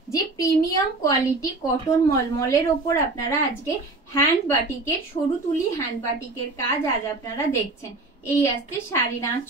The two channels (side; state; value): left; quieter; 3.2 dB